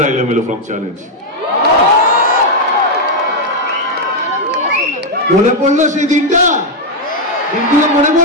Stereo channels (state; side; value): normal; both; correlation 0.01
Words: এলোমেলো ফ্রম চ্যালেঞ্জ। মনে পড়লো সেই দিনগুলো মনে